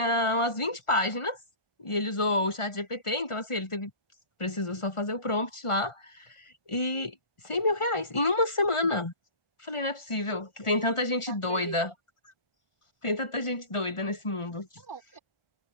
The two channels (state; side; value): late; right; 1.4 ms